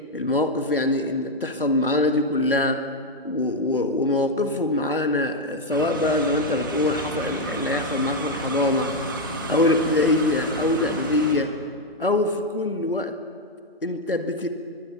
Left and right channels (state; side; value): normal; both; correlation 0.03